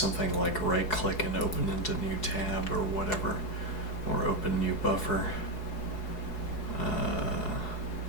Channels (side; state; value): right; late; 4.7 ms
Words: like right click and open into new tab or whatever, or open new buffer.